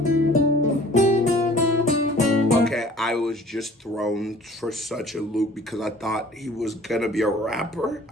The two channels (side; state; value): both; normal; correlation 0.50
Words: Okay, I was just thrown for such a loop because I thought he was gonna be a rapper.